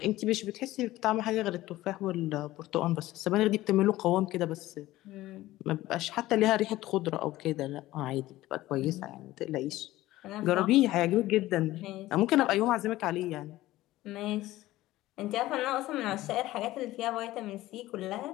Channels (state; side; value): quieter; right; 16.5 dB